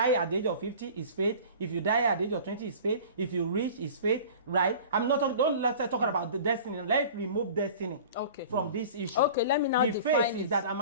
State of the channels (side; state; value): both; inverted; correlation -0.41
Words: at the age of 50, it's faith. If you die at the age of 20, it's faith. If you reach, it's faith, right? I'm not talking. Don't let's talk about the destiny. Let's remove destiny from this issue. Okay, let me now define the faith it. is that I'm